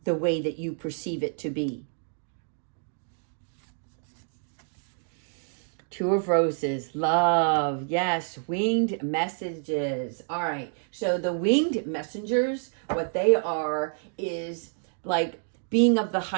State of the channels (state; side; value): silent; left; digital silence